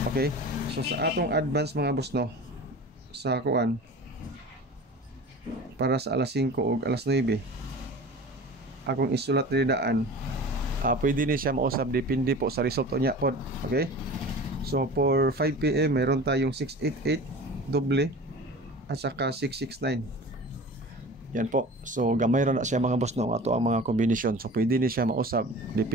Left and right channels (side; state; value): both; normal; correlation 0.38